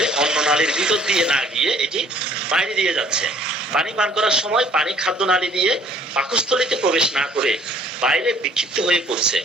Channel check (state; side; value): normal; both; correlation 0.57